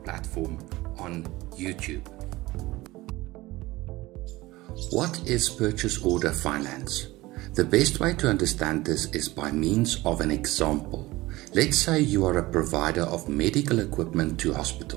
platform on YouTube. What is purchase order finance? The best way to understand this is by means of an example. Let's say you are a provider of medical equipment to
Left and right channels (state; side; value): quieter; left; 19.3 dB